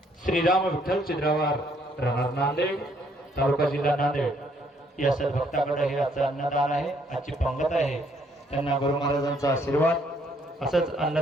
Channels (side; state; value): both; normal; correlation 0.67